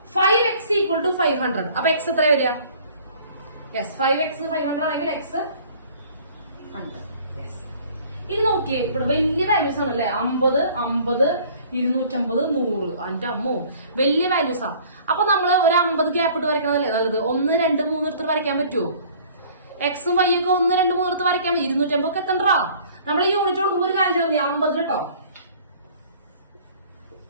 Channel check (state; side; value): inverted; both; correlation -0.52